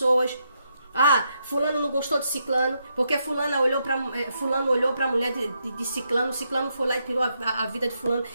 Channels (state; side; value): inverted; both; correlation -0.80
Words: fulano não gostou de ciclano, porque fulano olhou para a mulher de ciclano, ciclano foi lá e tirou a vida de fulano.